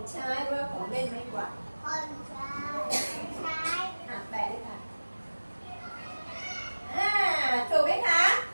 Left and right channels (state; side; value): inverted; both; correlation -1.00